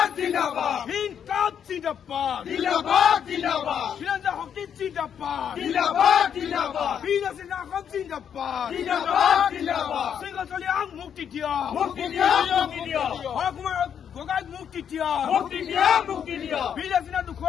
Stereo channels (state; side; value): quieter; right; 8.3 dB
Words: জিন্দাবাদ হিন্দকাপ জিন্দাবাদ জিন্দাবাদ জিন্দাবাদ খিলঞ্জীয়া শক্তি জিন্দাবাদ জিন্দাবাদ জিন্দাবাদ বীর লাচিত সেনা জিন্দাবাদ জিন্দাবাদ জিন্দাবাদ শৃংখলিয়াক মুক্তি দিয়ক মুক্তি দিয়ক মুক্তি দিয়ক হৰকুমাৰ গগৈক মুক্তি দিয়ক মুক্তি দিয়ক মুক্তি দিয়ক বীৰ লাচিত সেনা